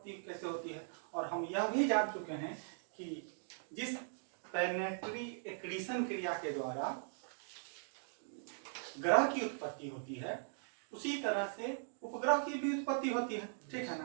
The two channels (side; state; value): left; silent; digital silence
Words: कैसे होती है, और हम यह भी जान चुके हैं कि जिस प्लैनेटरी एक्रीशन क्रिया के द्वारा ग्रह की उत्पत्ति होती है उसी तरह से उपग्रह की भी उत्पत्ति होती है। ठीक है